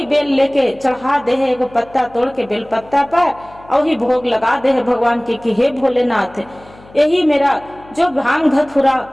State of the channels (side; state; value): left; noise; hum, 24 dB below the sound